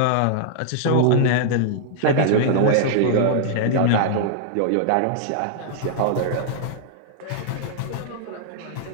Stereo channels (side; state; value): both; different; correlation -0.01